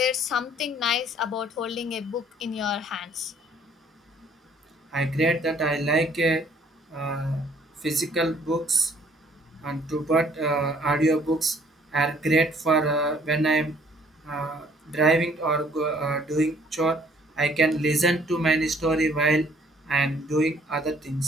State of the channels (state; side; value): normal; both; correlation 0.60